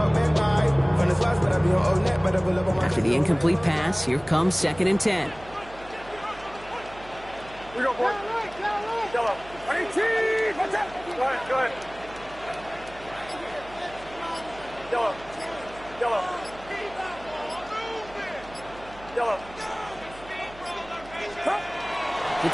After the incomplete pass, here comes 2nd and 10. Here we go, boy. Yellow. 18. Watch out. Go ahead. Yellow. To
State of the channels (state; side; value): noise; right; hum, 19 dB below the sound